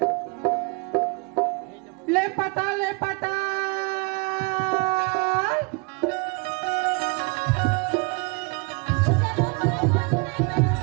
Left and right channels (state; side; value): quieter; left; 30.6 dB